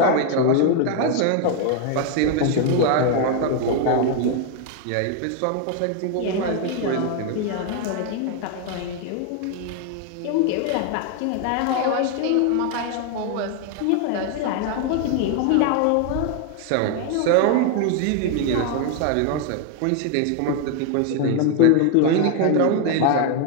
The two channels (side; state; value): both; different; correlation 0.01